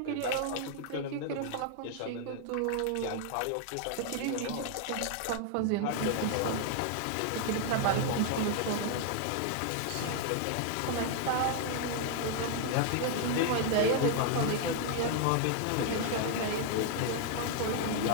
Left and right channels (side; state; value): both; different; correlation 0.00